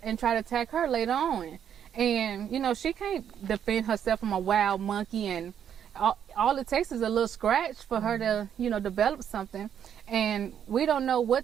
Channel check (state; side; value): quieter; left; 8.9 dB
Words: try to attack her later on? And, you know, she can't defend herself from a wild monkey, and all it takes is a little scratch for her to, you know, develop something. And we don't know